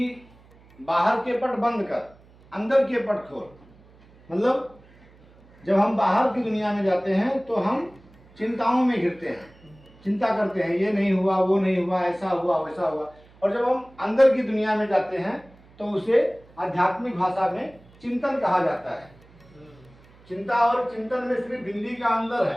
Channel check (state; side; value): noise; right; hum, 27 dB below the sound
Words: बाहर के पट बंद कर, अंदर के पट खोल। मतलब जब हम बाहर की दुनिया में जाते हैं तो हम चिंताओं में घिरते हैं, चिंता करते हैं, ये नहीं हुआ, वो नहीं हुआ, ऐसा हुआ, वैसा हुआ। और जब हम अंदर की दुनिया में जाते हैं तो उसे आध्यात्मिक भाषा में चिंतन कहा जाता है। चिंता और चिंतन में सिर्फ बिंदी का अंतर है,